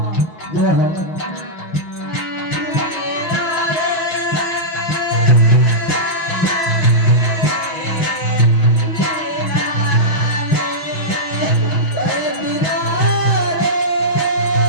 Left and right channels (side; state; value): right; late; 6.0 ms